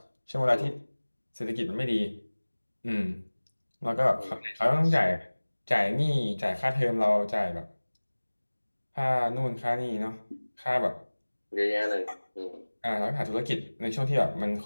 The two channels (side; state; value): both; inverted; correlation -1.00